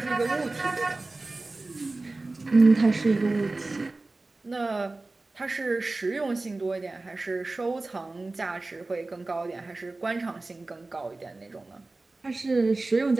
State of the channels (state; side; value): quieter; left; 3.2 dB